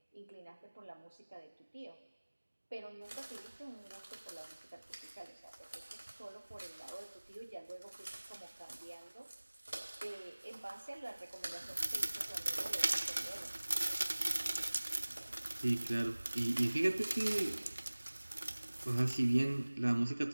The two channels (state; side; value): inverted; both; correlation -1.00